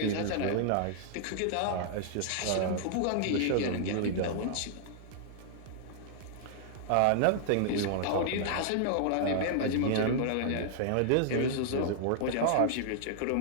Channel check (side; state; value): both; different; correlation -0.01